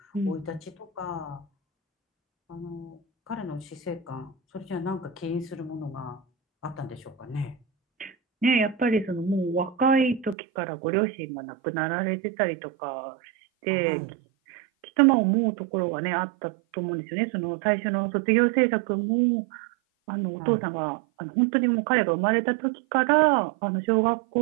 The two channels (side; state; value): left; drops out; at 10.4 s